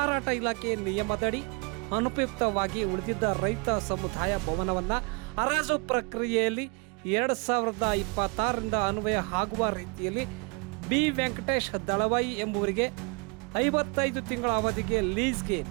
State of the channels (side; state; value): left; quieter; 31.8 dB